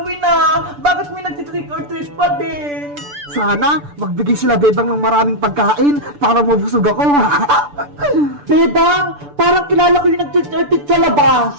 ah. Bakit may nag-treat or treat pa din? Sana magbigay sila Bebang ng maraming pagkain para mabusog ako. Bebang, parang kilala ko yung nag-treat or treat sa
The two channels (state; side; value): late; left; 6.9 ms